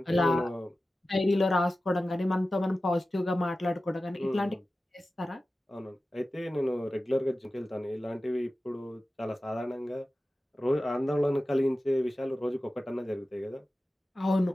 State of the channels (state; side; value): normal; both; correlation 0.95